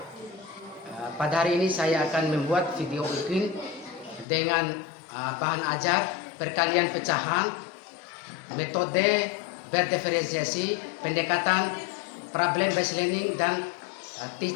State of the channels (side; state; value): right; drops out; at 4.2 s